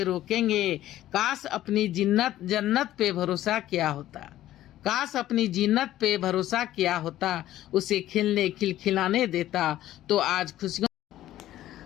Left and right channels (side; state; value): right; quieter; 13.7 dB